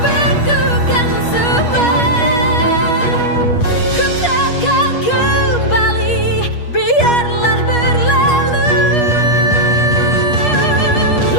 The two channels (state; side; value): late; right; 8.3 ms